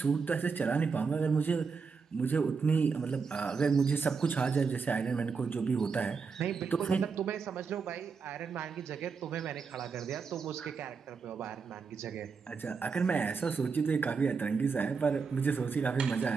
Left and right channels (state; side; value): quieter; left; 5.3 dB